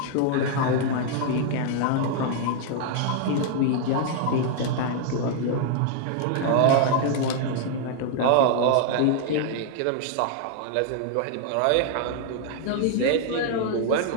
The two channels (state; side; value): different; both; correlation 0.00